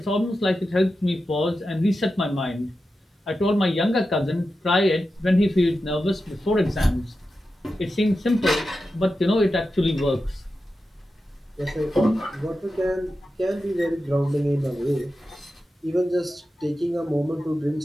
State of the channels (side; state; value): both; normal; correlation 0.91